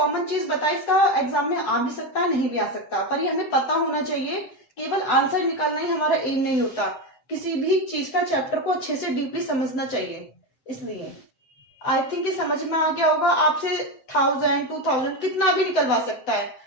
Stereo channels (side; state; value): right; late; 7.9 ms